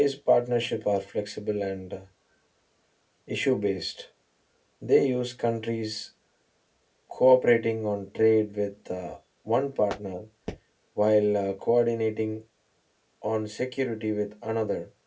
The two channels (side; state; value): both; identical; correlation 1.00